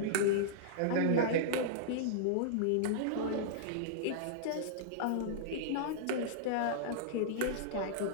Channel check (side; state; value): both; different; correlation -0.02